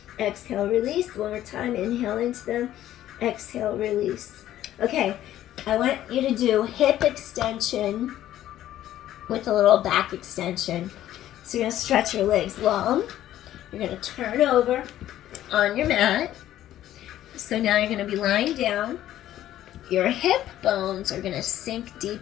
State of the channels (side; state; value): right; quieter; 12.9 dB